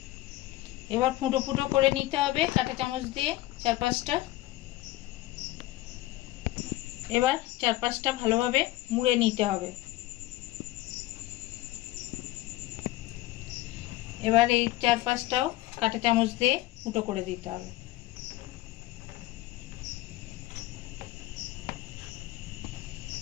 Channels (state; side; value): quieter; right; 17.0 dB